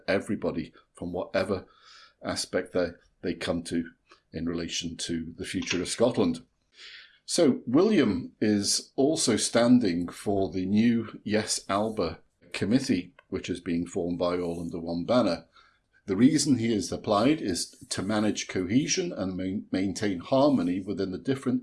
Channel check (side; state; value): both; identical; correlation 1.00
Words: everybody from whatever aspect they come to in relation to the future of Scotland. So William is also standing for the new Yes Alba committee, which is being formed by all under one banner. The reason he has applied is to manage cohesion and maintain harmony within the